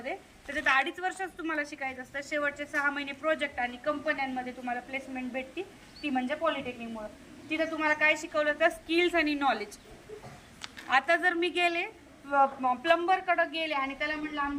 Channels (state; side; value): identical; both; correlation 1.00